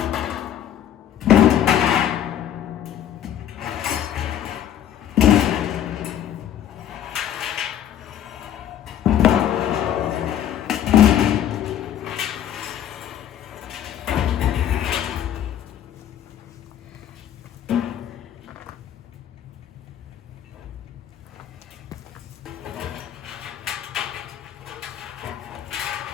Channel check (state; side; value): quieter; right; 10.5 dB